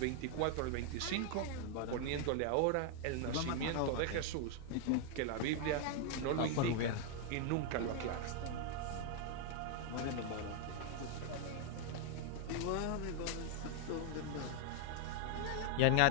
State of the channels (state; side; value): different; both; correlation 0.00